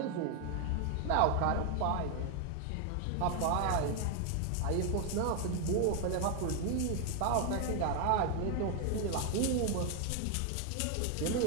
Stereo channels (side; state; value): both; different; correlation 0.01